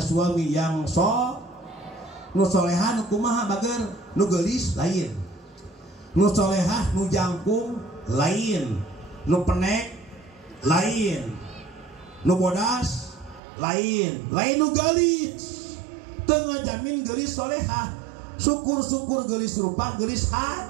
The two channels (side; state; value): left; drops out; at 13.4 s